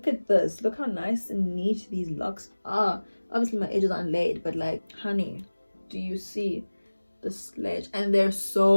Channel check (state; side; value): inverted; both; correlation -1.00